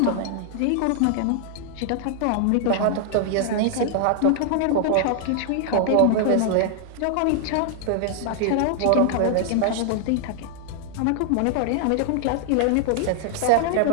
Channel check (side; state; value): both; different; correlation 0.00